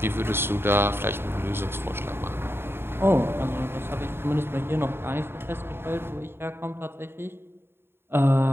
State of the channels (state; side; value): late; left; 0.11 ms